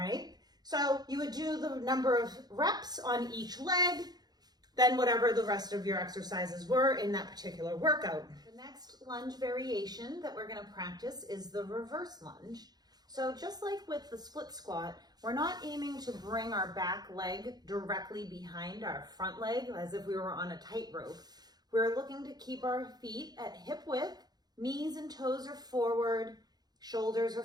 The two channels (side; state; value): left; late; 0.19 ms